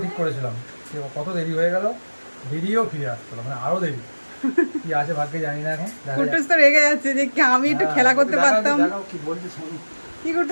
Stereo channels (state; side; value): inverted; both; correlation -1.00